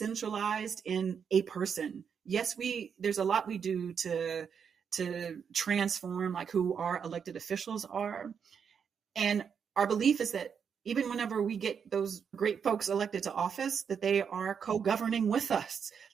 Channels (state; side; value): quieter; left; 7.0 dB